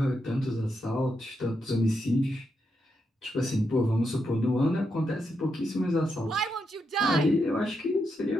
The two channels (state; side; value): normal; both; correlation 0.83